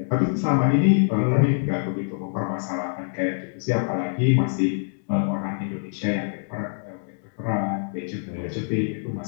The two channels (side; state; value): right; silent; digital silence